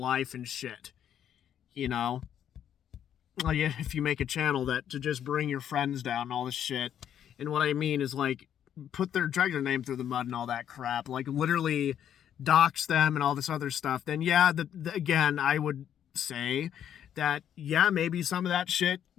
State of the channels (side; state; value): right; quieter; 9.7 dB